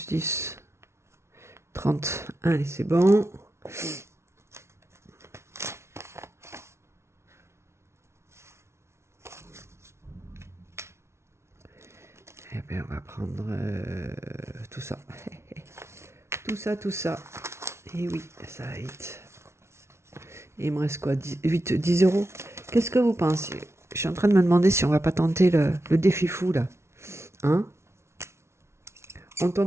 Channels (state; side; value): late; left; 0.13 ms